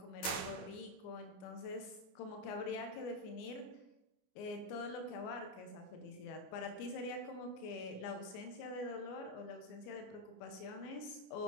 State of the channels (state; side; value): late; right; 24 ms